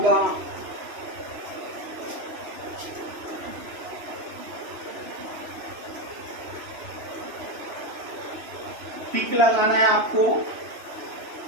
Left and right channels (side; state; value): left; late; 3.0 ms